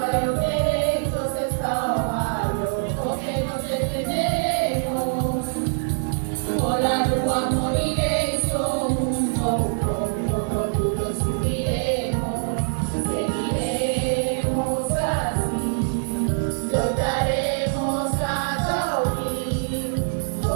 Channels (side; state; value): left; silent; digital silence